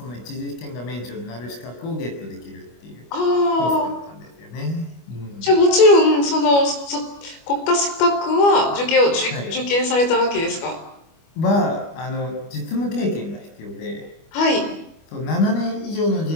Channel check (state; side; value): late; right; 25 ms